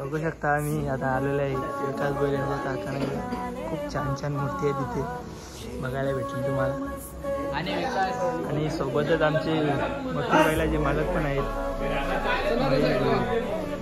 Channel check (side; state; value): both; identical; correlation 1.00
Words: शकता आम्ही आता आलेलो आहे विकास भोईर यांच्या कारखान्यात. खूप छान छान मूर्ती आहे तिथे, बघायला भेटेल तुम्हाला. आणि सोबतच आमचे मथुर बैलाचे मालक पण आहेत.